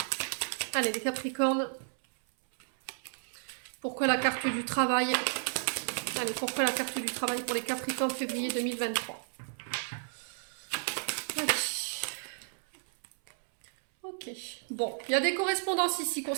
Allez, les Capricornes. Pourquoi la carte du travail? Allez, pourquoi la carte du travail pour les Capricornes février 2023? Allez. Ok. Bon, il y a des correspondances ici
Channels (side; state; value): left; silent; 56 dB below the other